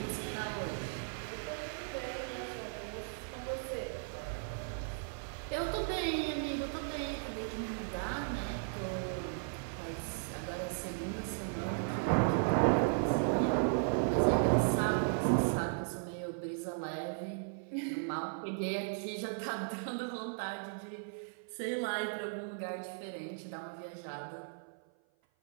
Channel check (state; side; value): silent; left; 53 dB below the other